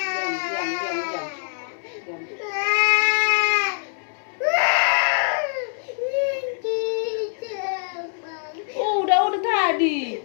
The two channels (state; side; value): silent; right; 63 dB below the other